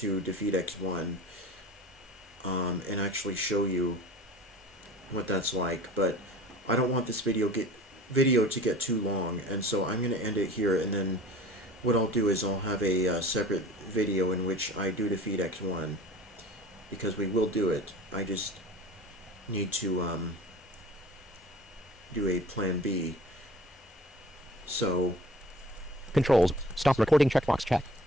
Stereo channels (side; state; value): both; normal; correlation 0.43